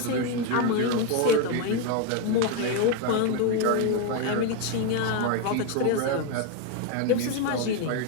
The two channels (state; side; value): different; both; correlation 0.02